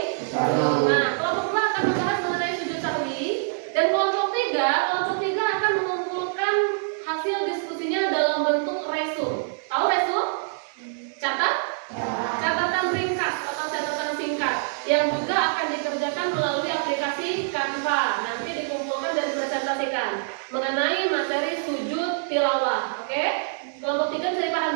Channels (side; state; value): left; silent; digital silence